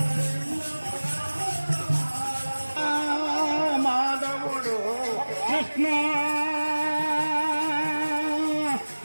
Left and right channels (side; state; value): both; inverted; correlation -1.00